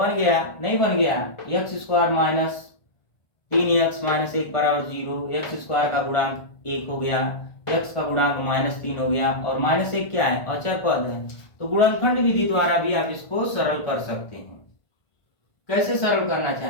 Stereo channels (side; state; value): right; late; 1.5 ms